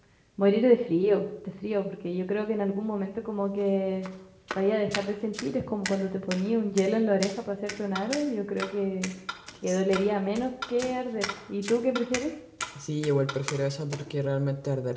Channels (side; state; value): both; identical; correlation 1.00